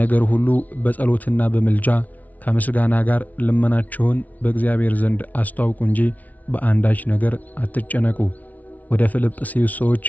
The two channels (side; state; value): right; late; 0.074 ms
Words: ሁሉ በጸሎትና በምልጃ ከምስጋና ጋር ልመናችሁን በእግዚአብሔር ዘንድ አስተዋውቁ እንጂ በአንዳች ነገር አትጨነቁ። ወደ ፊልጵስዩስ ሰዎች